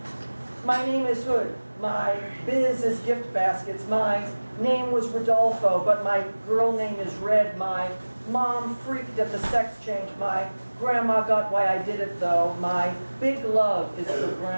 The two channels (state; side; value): inverted; both; correlation -1.00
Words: My name is Hood. My biz is gift baskets. My name was Rodolfo, but my girl name is Red. My mom freaked at the sex change. My grandma got why I did it though. My big love is for